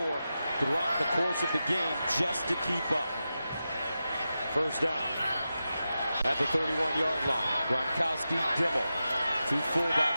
throughout the course of the game just to keep up. First down. At the 31-yard line, Gronkowski, Dimmel. Two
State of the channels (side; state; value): both; inverted; correlation -0.91